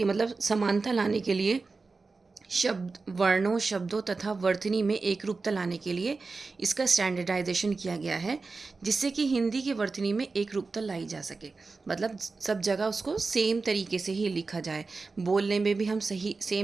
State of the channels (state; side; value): quieter; left; 4.0 dB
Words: मतलब समानता लाने के लिए, वर्णों, शब्दों तथा वर्तनी में एक रूपता लाने के लिए इसका स्टैंडर्डाइजेशन किया गया है, जिससे कि हिंदी की वर्तनी में एक रूपता लाई जा सके। मतलब सब जगह उसको सेम तरीके से ही लिखा जाए, बोलने में भी हम सही